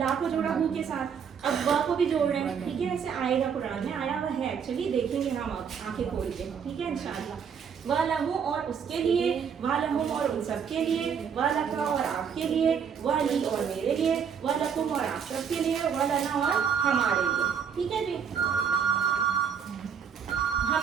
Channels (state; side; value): quieter; left; 7.2 dB